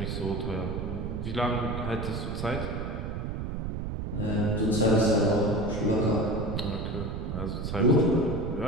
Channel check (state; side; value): noise; right; rumble, 4 dB below the sound